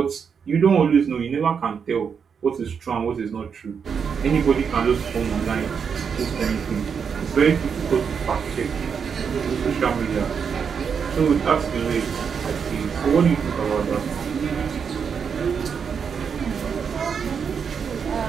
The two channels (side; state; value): left; quieter; 6.6 dB